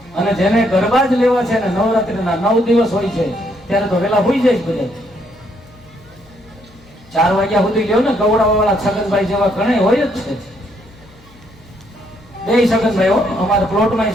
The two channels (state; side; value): noise; left; hum, 27 dB below the sound